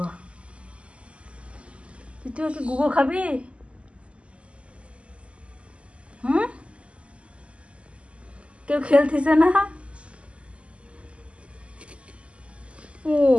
তুই কি গুগো খাবি? হুম, কেউ খেলতেছে না? ও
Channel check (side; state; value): left; late; 0.057 ms